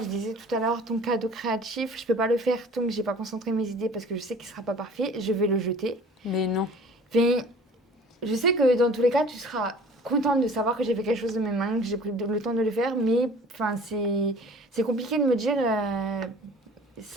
je disais tout à l'heure, ton cadeau créatif, je peux pas le faire tant que j'ai pas concentré mes idées parce que je sais qu'il sera pas parfait, je vais le jeter. Mais non. Mais je sais que dans tous les cas, tu seras contente de savoir que j'ai fait quelque chose de mes mains, que j'ai pris le temps de le faire, mais enfin, c'est compliqué de me dire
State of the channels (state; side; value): normal; both; correlation 0.47